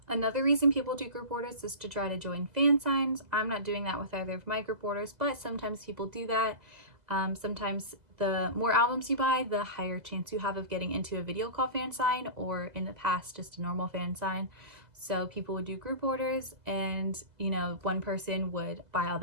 Another reason people do group orders is to try to join fan signs. I'm not doing that with either of my group orders, but sometimes people do that. Sometimes the more albums you buy, the higher chance you have of getting into a video call fan sign, or in the past, just a normal fan sign. So people would do group orders, and one person would buy all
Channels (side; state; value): left; late; 2.2 ms